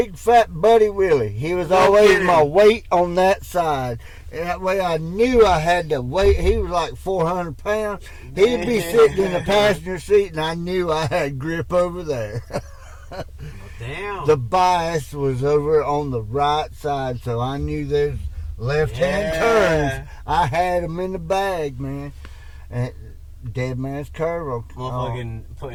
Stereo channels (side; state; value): both; identical; correlation 1.00